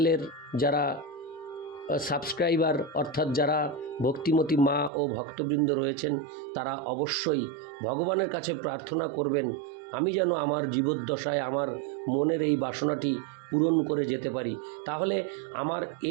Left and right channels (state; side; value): drops out; left; at 4.9 s